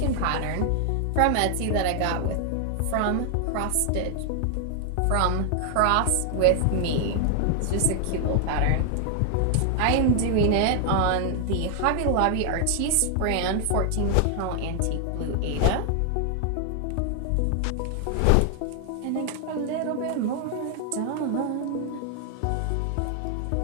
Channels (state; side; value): different; both; correlation 0.00